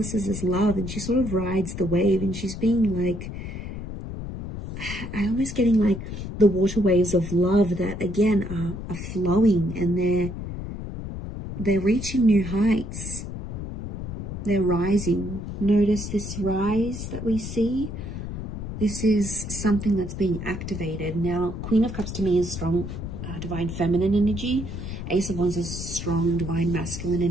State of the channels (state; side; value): noise; left; rumble, 7 dB below the sound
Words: is love, and she sort of rides the wave, and she's being like, I'm almost getting like the water waves of love that again are flowing, and they're reaching new heights. They're rising. Notice this rise that we see. This is something that's being activated. Now, Queen of Cups to me is strong divine feminine energy. Ace of Wands is strong divine masculine